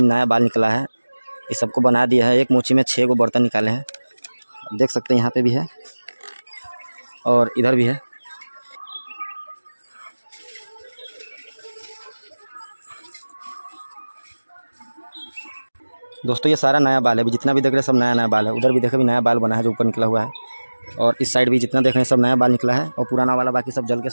नया बाल निकला है। ये सबको बना दिया है। एक मोची में 6 गो बर्तन निकाले हैं, देख सकते हैं। यहाँ पे भी है और इधर भी है। दोस्तों ये सारा नया बाल है, अभी जितना भी देख रहे हैं सब नया नया बाल है। उधर भी देखे भी नया बाल बना है जो ऊपर निकला हुआ है, और इस साइड भी जितना देख रहे हैं सब नया बाल निकला है, और पुराना वाला बाकी सब जल के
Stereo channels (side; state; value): both; inverted; correlation -1.00